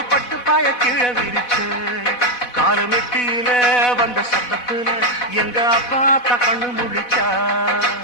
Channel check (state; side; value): late; right; 4.1 ms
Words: பட்டு பாய கீழே விரிச்ச காலமெட்டியில வந்த சத்தத்துல எங்க அப்பா கண்ணு முழிச்சா